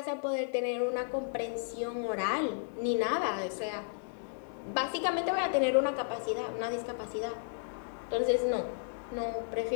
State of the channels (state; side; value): silent; right; digital silence